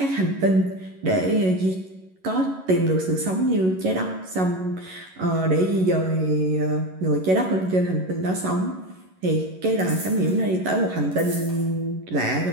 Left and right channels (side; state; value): left; late; 11 ms